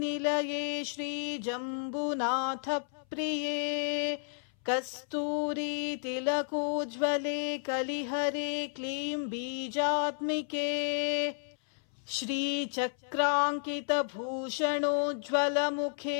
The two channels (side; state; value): right; silent; 56 dB below the other